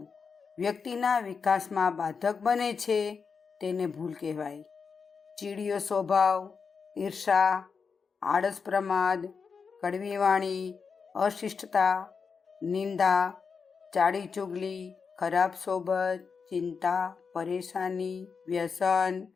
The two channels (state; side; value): quieter; right; 5.5 dB